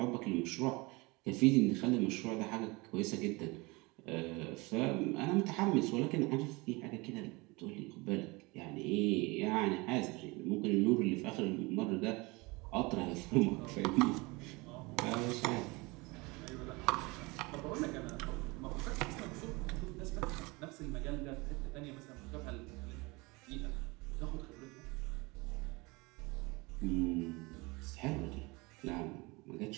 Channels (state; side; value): quieter; left; 25.1 dB